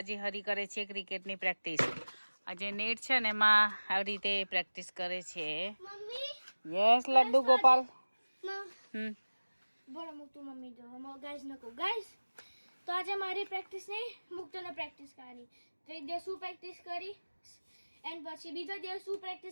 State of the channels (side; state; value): both; inverted; correlation -1.00